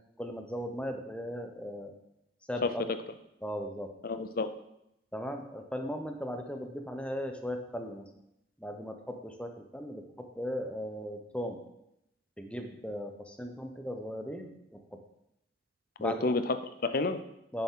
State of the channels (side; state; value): both; normal; correlation 0.45